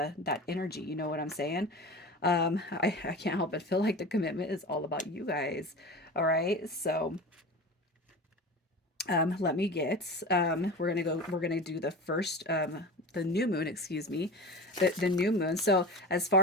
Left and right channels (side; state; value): both; normal; correlation 0.32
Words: energy. You know what I'm saying? I can't help but feel like the commitment is all about you guys. All right, so let me get, we're gonna do the first, the new moon, excuse me, the new moon. So as